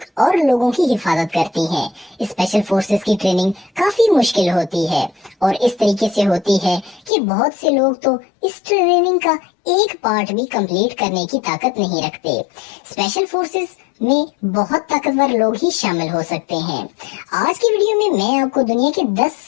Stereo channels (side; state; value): right; drops out; at 7.1 s